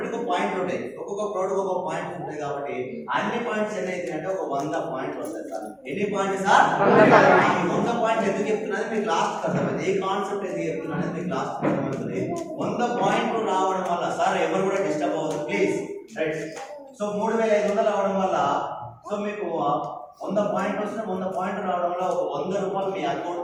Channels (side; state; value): both; identical; correlation 1.00